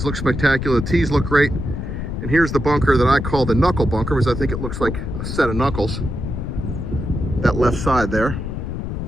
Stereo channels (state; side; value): noise; left; rumble, 5 dB below the sound